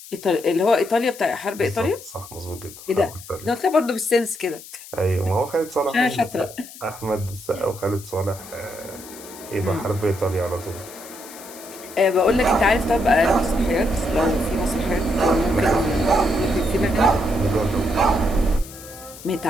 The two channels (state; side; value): noise; left; hiss, 17 dB below the sound